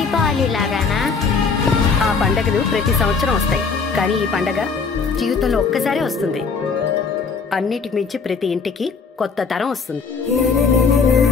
లాగానా? ఆ పండగలు ప్రతి సంవత్సరం వస్తాయి, కానీ ఈ పండగ జీవితంలో ఒక్కసారే వస్తుంది. అన్నిటికి మించి ప్రతి ఇంటికి కొత్త తరం వస్తుంది.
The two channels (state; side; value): quieter; right; 5.1 dB